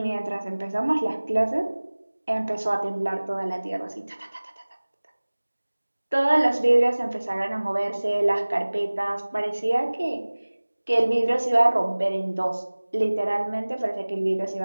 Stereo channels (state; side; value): inverted; both; correlation -1.00